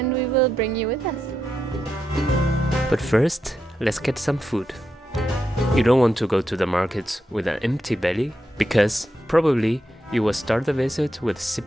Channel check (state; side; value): normal; both; correlation 0.85